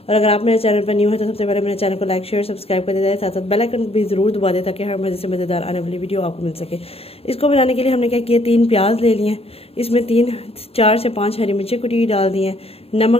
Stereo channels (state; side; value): late; right; 0.28 ms